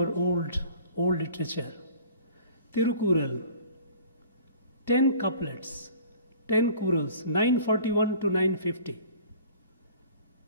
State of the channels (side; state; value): both; inverted; correlation -0.48